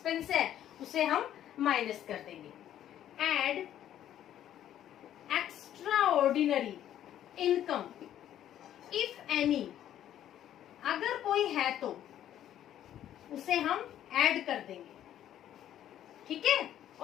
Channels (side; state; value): right; quieter; 11.3 dB